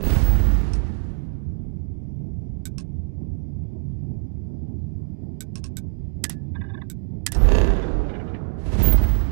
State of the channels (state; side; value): silent; left; digital silence